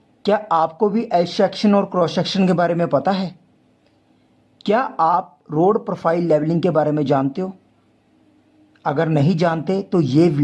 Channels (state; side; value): identical; both; correlation 1.00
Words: क्या आपको भी एल सेक्शन और क्रॉस सेक्शन के बारे में पता है? क्या आप रोड प्रोफाइल लेवलिंग के बारे में जानते हो? अगर नहीं जानते तो ये